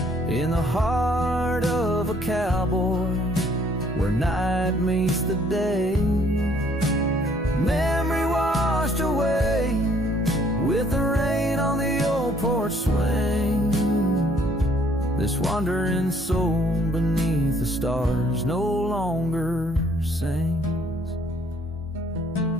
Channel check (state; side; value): normal; both; correlation 0.63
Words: In the heart of a cowboy, where night meets the day. Memory washed away with the rain on the old porch swing. This wandering soul beneath the stars no longer sings.